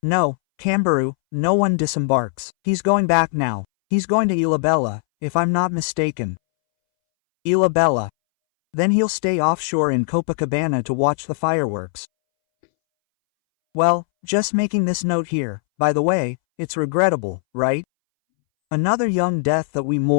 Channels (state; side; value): silent; right; 64 dB below the other